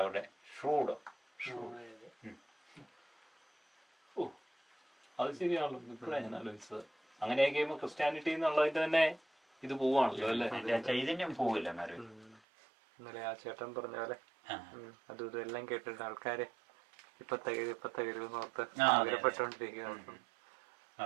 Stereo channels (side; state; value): left; drops out; at 12.4 s